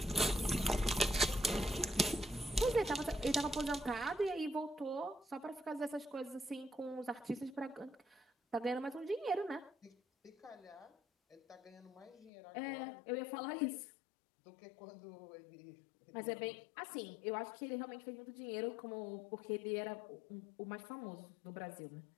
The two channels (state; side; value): drops out; right; at 12.3 s